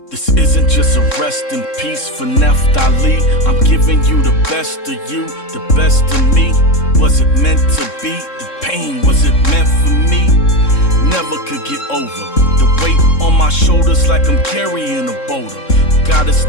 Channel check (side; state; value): right; late; 3.7 ms